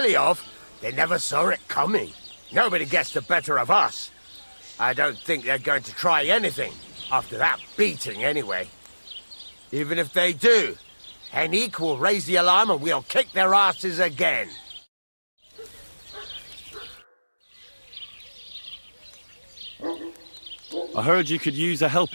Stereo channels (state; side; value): inverted; both; correlation -1.00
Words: They never saw it coming. Nobody gets the better of us. I don't think they're going to try anything after that beating anyway. Even if they do, Henrik will raise the alarm and we'll kick their asses again. I heard you could use a